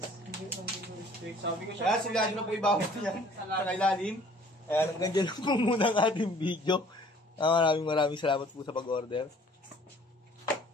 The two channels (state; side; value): normal; both; correlation 0.54